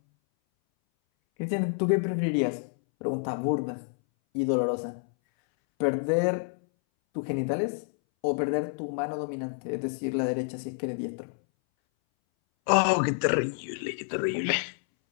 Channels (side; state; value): right; silent; 59 dB below the other